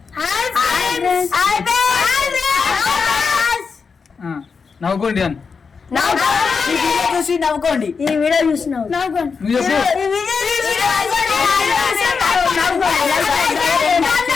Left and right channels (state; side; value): quieter; right; 5.3 dB